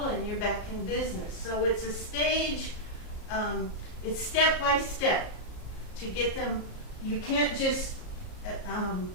and you're back in business. So it's a stage, it's step by step to get them. You can't just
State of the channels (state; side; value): late; right; 34 ms